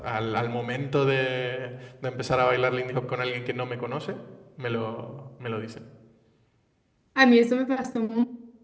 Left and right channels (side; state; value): both; identical; correlation 1.00